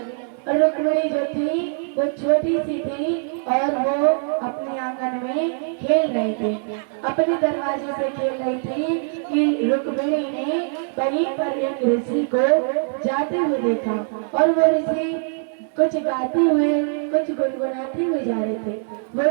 और रुक्मिणी जो थी वो छोटी सी थी और वो अपने आंगन में खेल रही थी, अपने दरवाजे से खेल रही थी कि रुक्मिणी ने वहीं पर एक ऋषि को जाते हुए देखा। और वो ऋषि कुछ गाते हुए कुछ गुनगुनाते हुए जा रहे थे। वो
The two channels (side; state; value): left; silent; 62 dB below the other